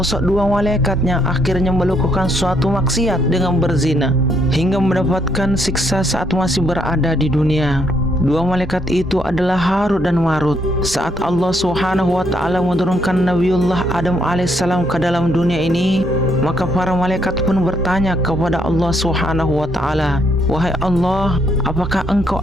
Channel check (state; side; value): normal; both; correlation 0.72